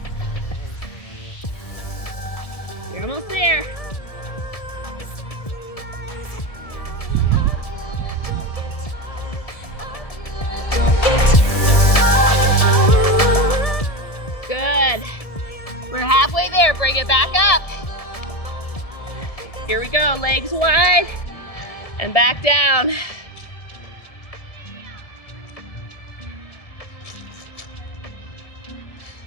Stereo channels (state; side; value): late; right; 1.7 ms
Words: You're almost there. Good. We're halfway there. Bring it back up. Here we go. Legs wide and back down.